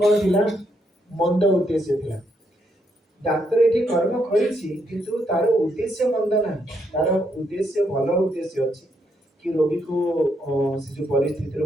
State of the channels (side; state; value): both; normal; correlation 0.76